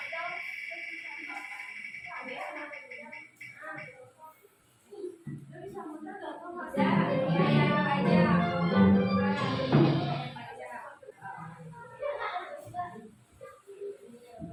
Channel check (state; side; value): identical; both; correlation 1.00